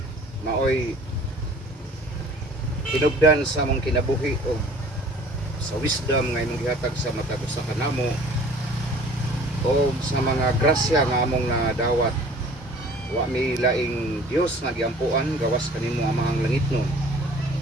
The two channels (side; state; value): both; normal; correlation 0.49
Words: maoy hinubdan sa mong kinabuhi o sa wisdom nga imong gihatag sa matag usa ka namo o sa mga grasya nga among nadawat. Wa mi laing Dios nga giampuan gawas kanimo amahang langitnon.